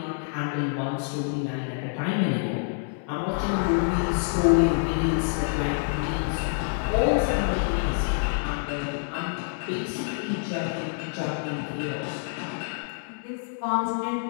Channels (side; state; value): right; silent; 60 dB below the other